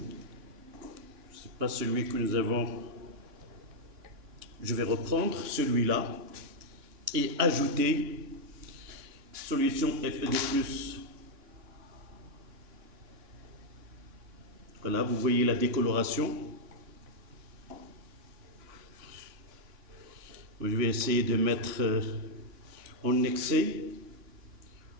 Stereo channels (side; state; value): left; late; 3.6 ms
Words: C'est pas celui que nous avons. Je vais reprendre celui-là et ajouter solution Fe2+. Voilà, vous voyez la décoloration. Je vais essayer de mettre en excès